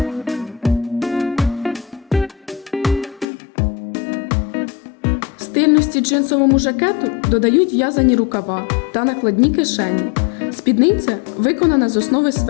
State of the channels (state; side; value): drops out; right; at 3.2 s